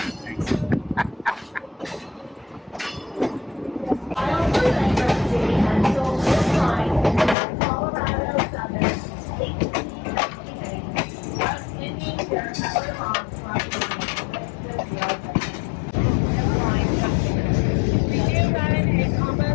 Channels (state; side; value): drops out; right; at 7.4 s